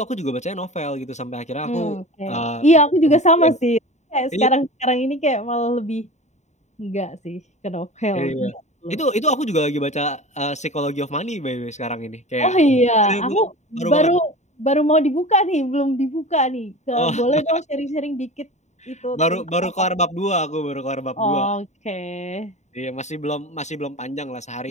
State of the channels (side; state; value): right; late; 0.34 ms